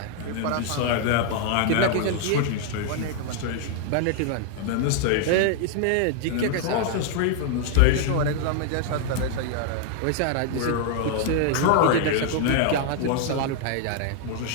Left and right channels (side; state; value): both; different; correlation 0.00